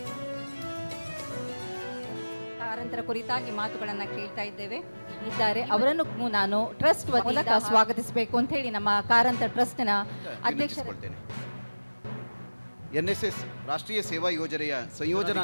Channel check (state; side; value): inverted; both; correlation -1.00